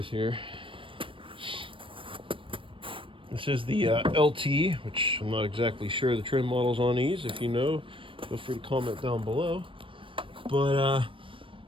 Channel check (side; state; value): left; late; 0.25 ms